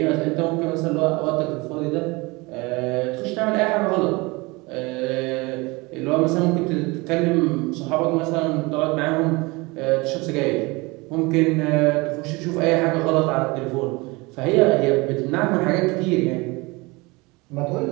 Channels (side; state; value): left; quieter; 24.7 dB